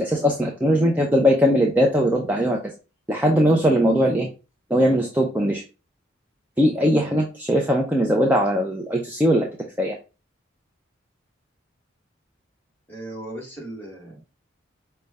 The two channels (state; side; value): normal; both; correlation 0.73